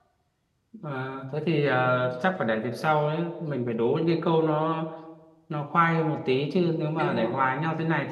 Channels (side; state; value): both; identical; correlation 1.00